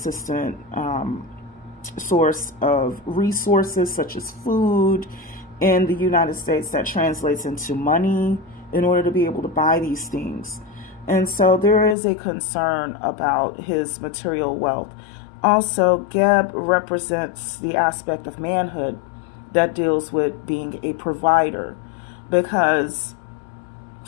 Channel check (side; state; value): right; drops out; at 12.0 s